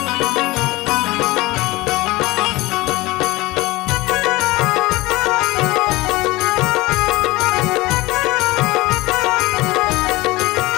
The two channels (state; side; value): quieter; right; 20.8 dB